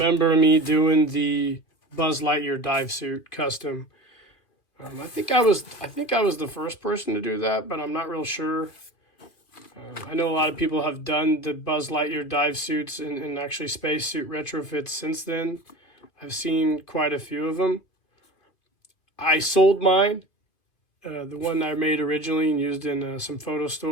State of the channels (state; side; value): late; right; 2.5 ms